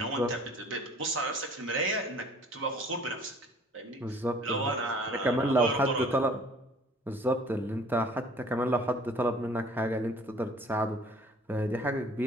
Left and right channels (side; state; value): both; normal; correlation 0.52